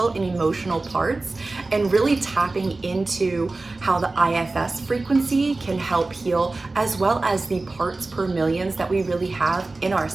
and emotional parts and really tapping into how the IFS frequency can help heal, as well as the parts per millions that we really have in our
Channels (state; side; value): quieter; left; 3.3 dB